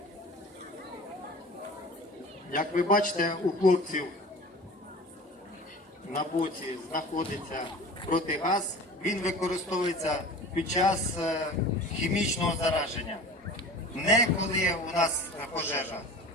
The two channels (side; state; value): both; normal; correlation 0.39